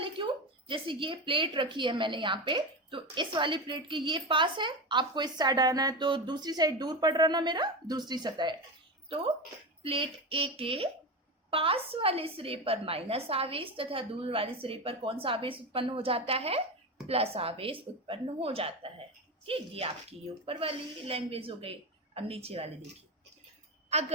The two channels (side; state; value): both; normal; correlation 0.19